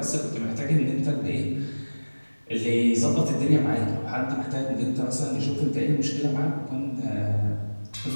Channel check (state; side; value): inverted; both; correlation -1.00